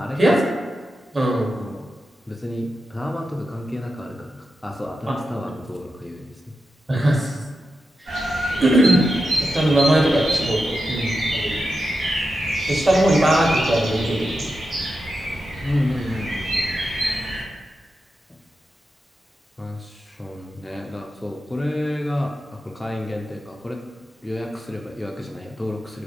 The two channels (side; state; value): both; normal; correlation 0.89